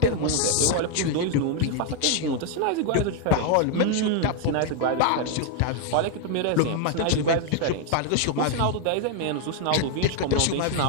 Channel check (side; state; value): both; different; correlation 0.01